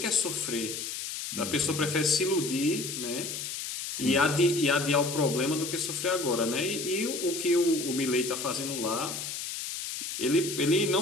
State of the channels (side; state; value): left; noise; hiss, 6 dB below the sound